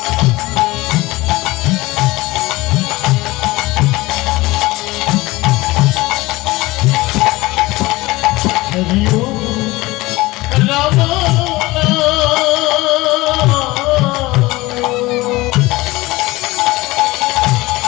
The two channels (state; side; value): quieter; right; 20.4 dB